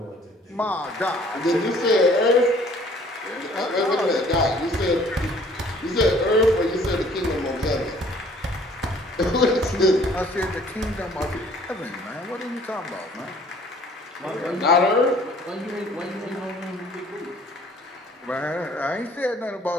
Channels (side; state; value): both; normal; correlation 0.56